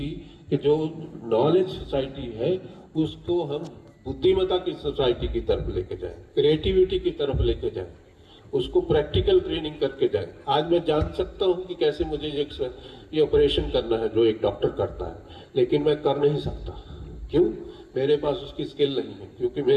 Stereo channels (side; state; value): both; identical; correlation 1.00